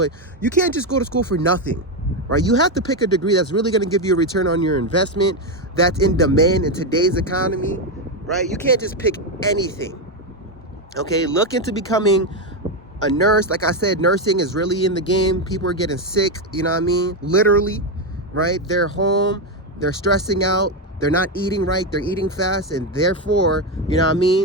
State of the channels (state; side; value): normal; both; correlation 0.08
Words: you can't just go to school for nothing. Right? You have to pick a degree that's really going to give you a return on your investment, that's in demand in today's economy, right? You can't just pick anything, okay? Look into becoming a nurse. Like I said, nursing is really in the game. People are getting sick, you know what I mean? Literally, right? They're home, they're stressing out, they're not eating right, they're eating fast, and therefore, you know what I